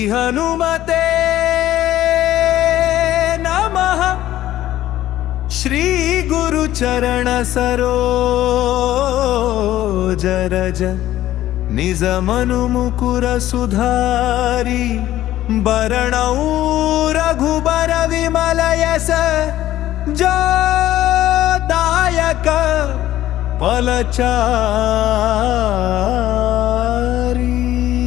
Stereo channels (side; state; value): right; quieter; 13.8 dB